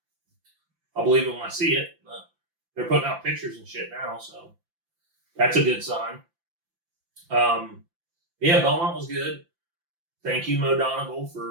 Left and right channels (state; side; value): late; left; 5.8 ms